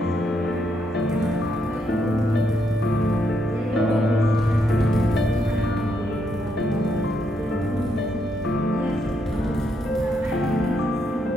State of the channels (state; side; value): normal; both; correlation 0.77